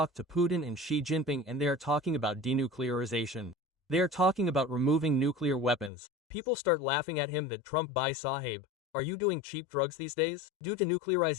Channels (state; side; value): drops out; right; at 5.9 s